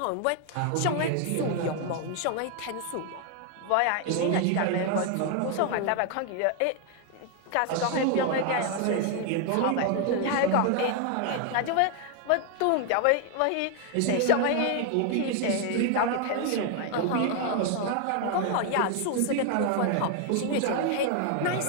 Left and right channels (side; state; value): both; different; correlation 0.00